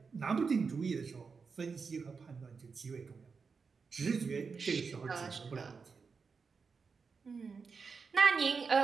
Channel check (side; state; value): left; quieter; 5.2 dB